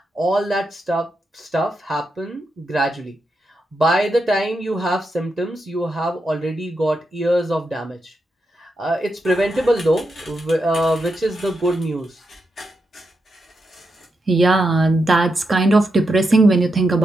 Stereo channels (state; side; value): normal; both; correlation 0.85